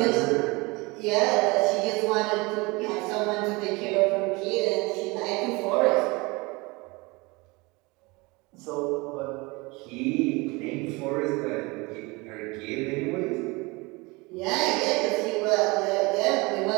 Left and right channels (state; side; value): quieter; left; 25.1 dB